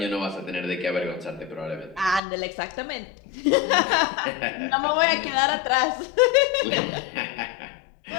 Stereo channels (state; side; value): drops out; right; at 2.2 s